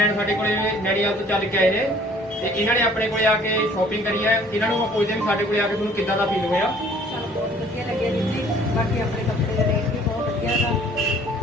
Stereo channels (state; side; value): noise; left; rumble, 30 dB below the sound